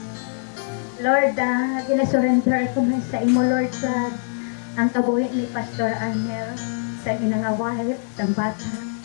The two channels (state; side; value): silent; right; 62 dB below the other